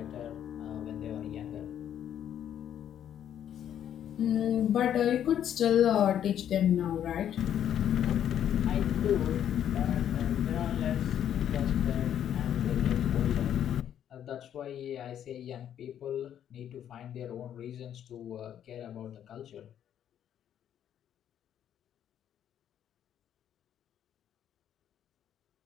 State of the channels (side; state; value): right; quieter; 10.0 dB